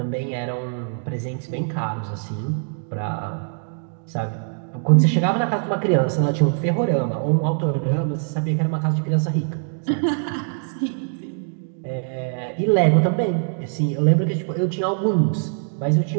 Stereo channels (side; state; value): left; silent; 59 dB below the other